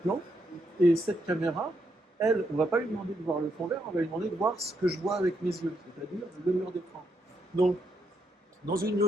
et cette caméra, elle, on ne va pas lui demander de voir le fond vert, on va lui demander de voir ce que je vois avec mes yeux, c'est-à-dire le mur d'écran. Donc, dans une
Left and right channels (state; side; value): normal; both; correlation 0.79